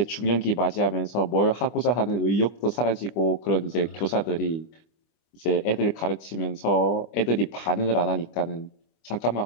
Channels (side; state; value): right; late; 25 ms